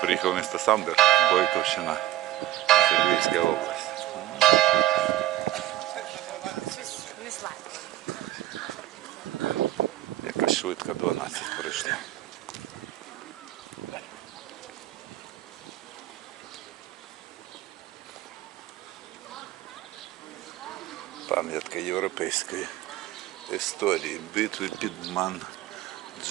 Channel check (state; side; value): quieter; left; 14.4 dB